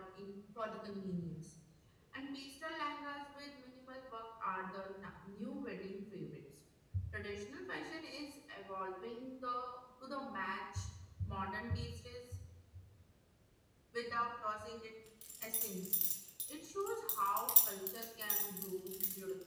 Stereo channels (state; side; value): identical; both; correlation 1.00